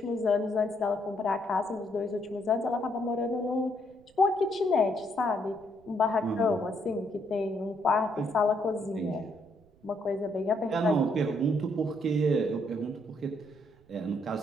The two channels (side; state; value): right; noise; rumble, 29 dB below the sound